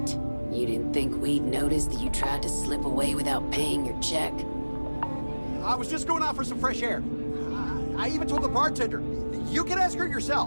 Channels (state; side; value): inverted; both; correlation -1.00